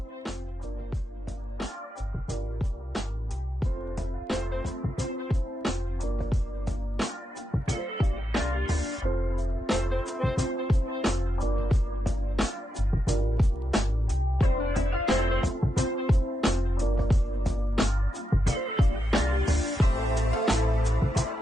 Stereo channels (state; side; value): normal; both; correlation 0.85